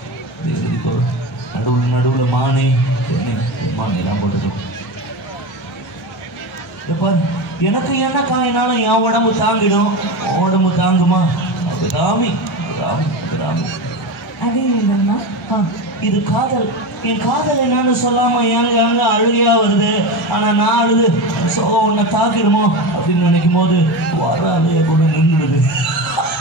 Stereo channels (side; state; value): both; normal; correlation 0.22